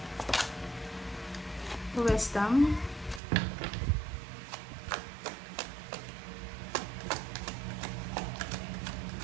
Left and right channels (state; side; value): drops out; left; at 3.2 s